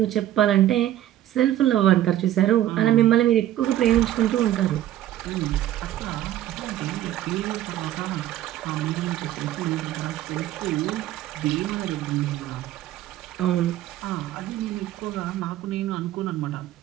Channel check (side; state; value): left; quieter; 12.9 dB